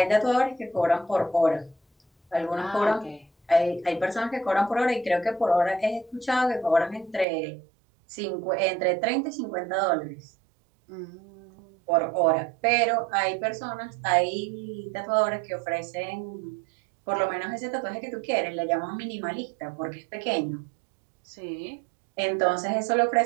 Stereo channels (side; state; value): left; drops out; at 7.2 s